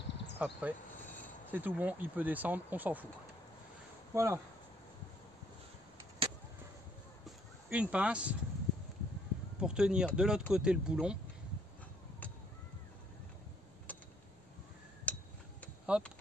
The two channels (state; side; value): normal; both; correlation 0.67